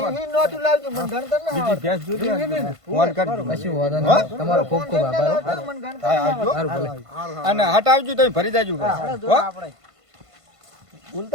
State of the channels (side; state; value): left; late; 1.5 ms